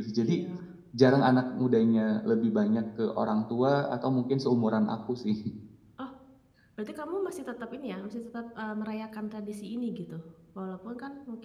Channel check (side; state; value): both; identical; correlation 1.00